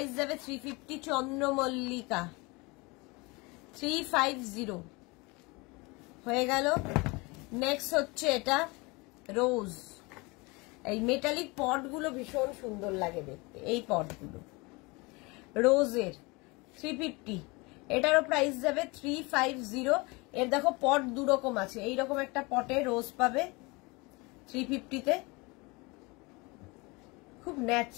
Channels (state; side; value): quieter; right; 26.0 dB